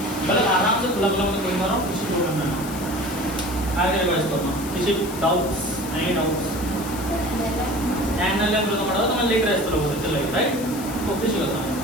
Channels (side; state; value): left; noise; hiss, 12 dB below the sound